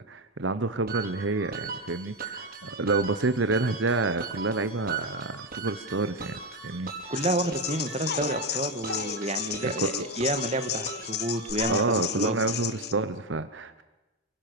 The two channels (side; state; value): both; normal; correlation 0.11